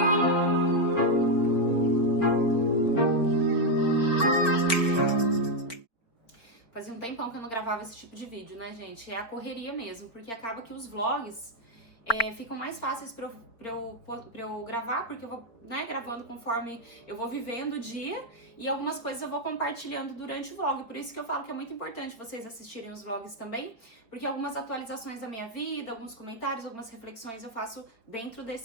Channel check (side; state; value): right; late; 4.4 ms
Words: Fazia um tempão que eu não gravava esse tipo de vídeo, né, gente? É a correria mesmo, porque acaba que os vlogs ficam mais fáceis pra eu gravar, porque eu vou, né, gravando conforme eu vou vivendo o dia e algumas coisas eu vou compartilhando durante o vlog. Por isso que eu falo que é muito importante vocês assistirem os vlogs também, porque algumas atualizações da minha vida, alguns comentários, algumas reflexões eu faço dentro